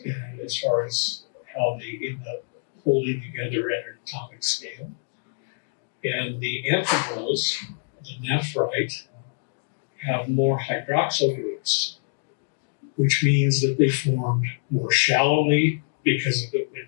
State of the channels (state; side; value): silent; right; digital silence